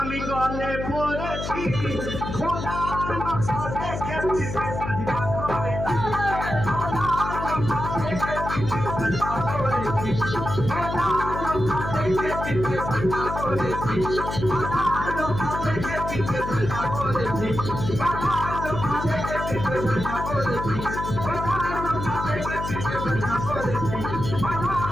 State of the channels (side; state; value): left; noise; hum, 6 dB below the sound